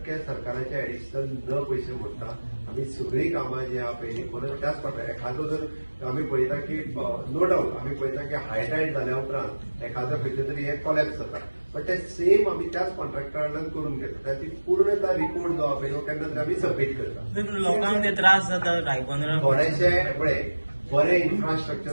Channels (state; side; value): inverted; both; correlation -1.00